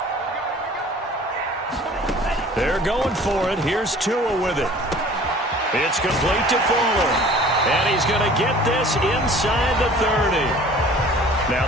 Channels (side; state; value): both; normal; correlation 0.48